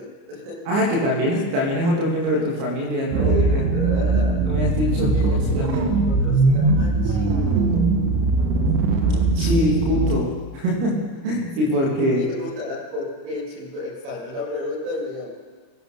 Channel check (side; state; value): left; late; 30 ms